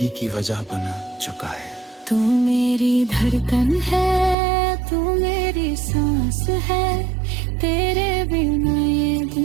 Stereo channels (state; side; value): drops out; left; at 4.4 s